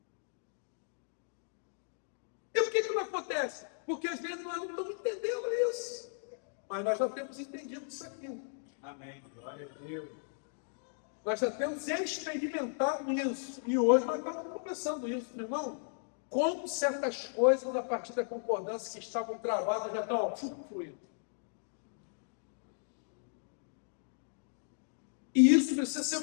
E por que não acontece? Porque às vezes nós não estamos entendendo isso. Mas nós já temos entendido isso aqui. Amém. Glória a Deus. Nós já temos experimentado isso. E hoje nós estamos começando isso, meu irmão. Como certas coisas, a partir da concordância que estavam travadas, já estão fluindo. E isso precisa ser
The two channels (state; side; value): silent; right; digital silence